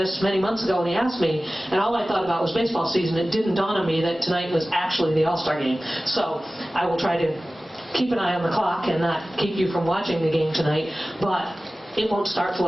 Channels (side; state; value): both; normal; correlation 0.97